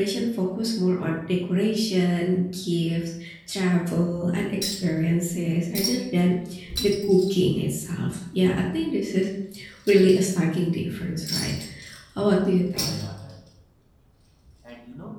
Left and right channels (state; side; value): identical; both; correlation 1.00